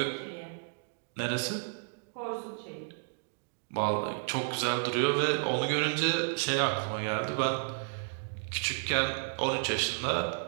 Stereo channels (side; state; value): left; silent; digital silence